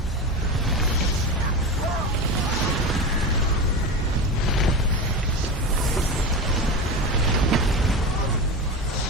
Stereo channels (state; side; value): normal; both; correlation 0.23